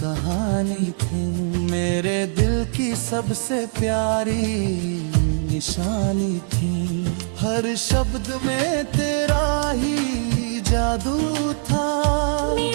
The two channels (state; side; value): silent; left; 64 dB below the other